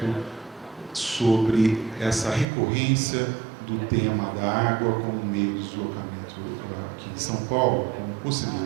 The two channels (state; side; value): drops out; left; at 2.5 s